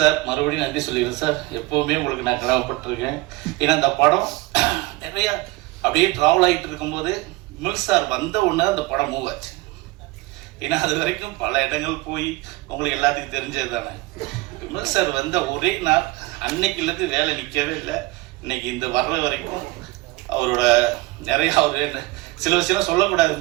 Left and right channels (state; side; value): quieter; left; 21.4 dB